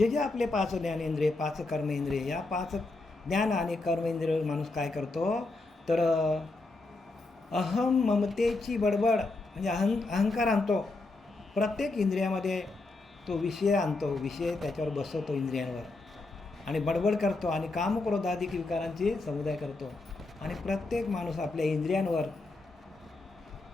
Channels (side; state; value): right; quieter; 3.3 dB